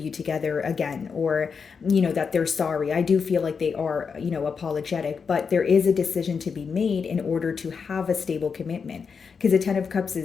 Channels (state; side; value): quieter; right; 5.8 dB